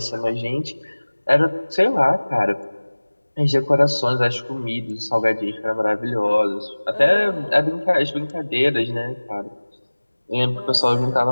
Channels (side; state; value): both; inverted; correlation -1.00